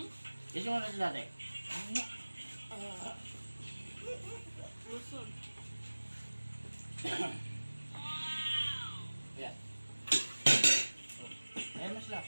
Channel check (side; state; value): both; inverted; correlation -1.00